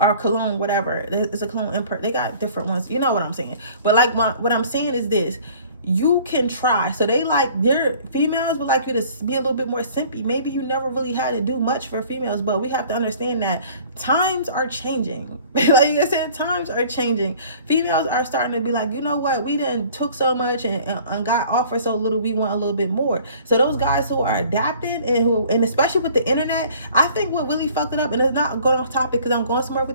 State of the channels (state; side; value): inverted; both; correlation -0.51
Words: cologne, whatever. It's a cologne import. They got different ones. You know what I'm saying? But like what I'm saying is this. You can try. So they like, their females would like you to be a little bit more simpy. Maybe you never really had to do much for females, but we have to understand that times are changing. Like I said, times are changing. Females are starting to be like, you know what, we done took so much and got offered so little, we want a little bit more. So those guys who are adapted and especially with the internet, I think what really fucked it up, and it's not going off topic because I'm going somewhere